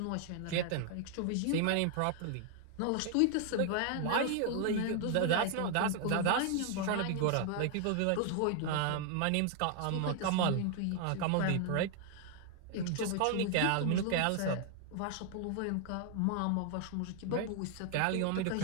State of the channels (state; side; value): different; both; correlation 0.00